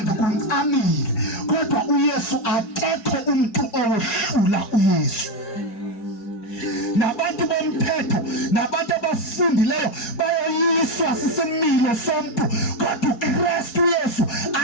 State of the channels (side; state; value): right; late; 4.7 ms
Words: ngikuncamile. Kodwa uYesu, akekho umuntu owehlula uYesu. Nabantu bomthetho nabantu abafundileyo bayoyiswa sisimilo somuntu, kodwa uKristu Yesu